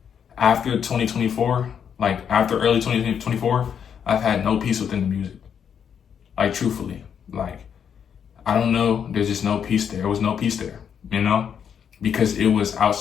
2024, after early 2024, I've had no peace within the music. Truthfully, I don't know. There's just no peace there. There was no peace there, because it was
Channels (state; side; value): quieter; right; 7.8 dB